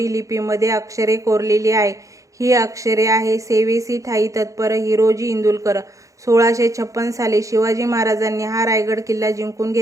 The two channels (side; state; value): left; late; 0.16 ms